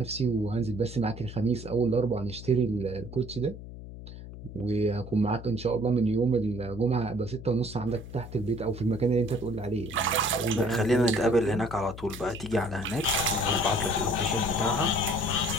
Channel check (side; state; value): left; noise; hum, 13 dB below the sound